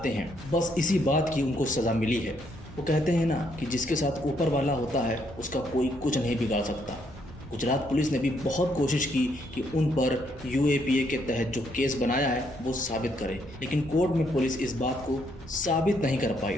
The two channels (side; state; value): both; normal; correlation 0.72